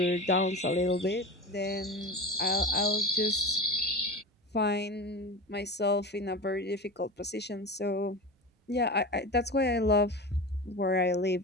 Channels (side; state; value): both; normal; correlation 0.30